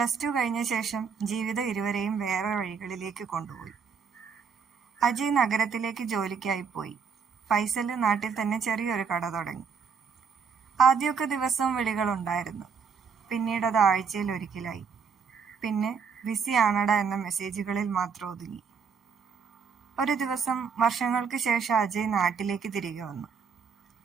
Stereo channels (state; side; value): quieter; left; 6.1 dB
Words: കഴിഞ്ഞ ശേഷം ജീവിതം ഇരുവരെയും വേറെ വഴികളിലേക്ക് കൊണ്ടുപോയി. അജയ് നഗരത്തിലേക്ക് ജോലിക്കായി പോയി. ഫൈസൽ നാട്ടിൽ തന്നെ ചെറിയൊരു കട തുടങ്ങി. ആദ്യമൊക്കെ ദിവസവും വിളികളുണ്ടായിരുന്നു. പിന്നീട് അത് ആഴ്ചയിൽ ഒരിക്കലായി. പിന്നെ ബിസി ആണടാ എന്ന മെസ്സേജുകളിൽ മാത്രം ഒതുങ്ങി. ഒരു ദിവസം വർഷങ്ങൾക്ക് ശേഷം അജയ് നാട്ടിലേക്ക് തിരികെ വന്നു.